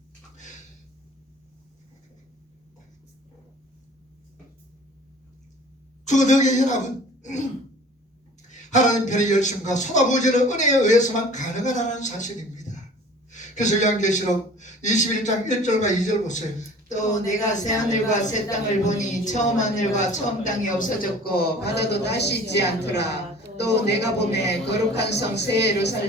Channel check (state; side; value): normal; both; correlation 0.47